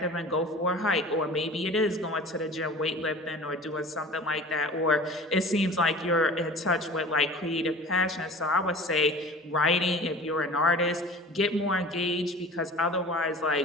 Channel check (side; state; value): both; normal; correlation 0.41